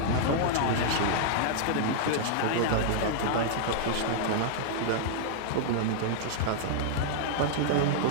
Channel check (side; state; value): both; different; correlation -0.01